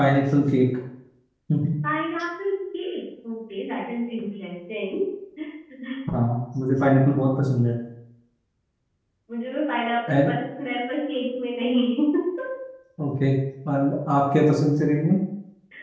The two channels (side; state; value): both; identical; correlation 1.00